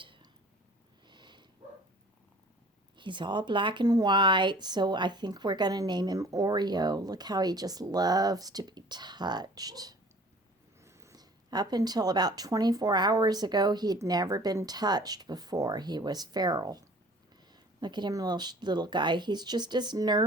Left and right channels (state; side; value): normal; both; correlation 0.49